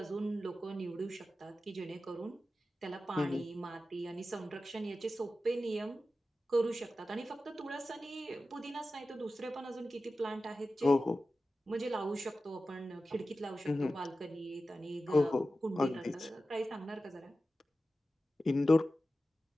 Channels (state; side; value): normal; both; correlation 0.94